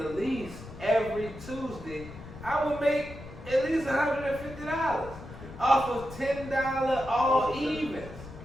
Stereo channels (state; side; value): noise; left; rumble, 14 dB below the sound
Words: least, every Tuesday, I would make at least $150 off of $10 all evens.